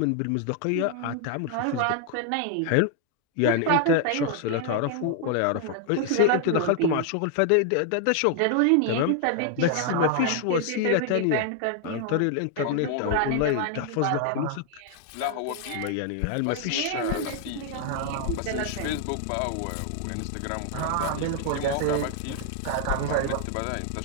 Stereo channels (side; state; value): both; different; correlation 0.00